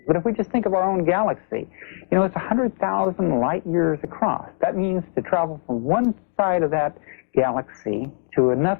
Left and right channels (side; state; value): right; silent; digital silence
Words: But if we just think of our own galaxy, you know, it's 100,000 light years across. That means to travel from one side of that galaxy to